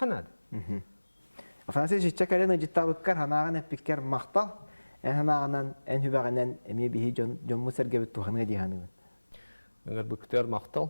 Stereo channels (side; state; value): both; inverted; correlation -1.00